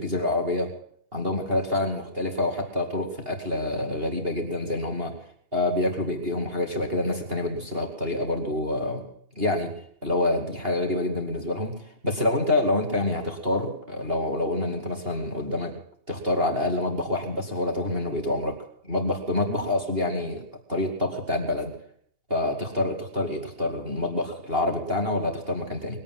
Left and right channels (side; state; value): left; late; 2.8 ms